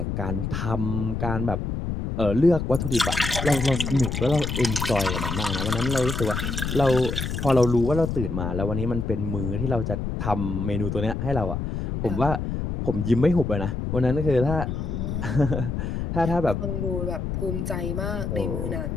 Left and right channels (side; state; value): left; noise; rumble, 3 dB below the sound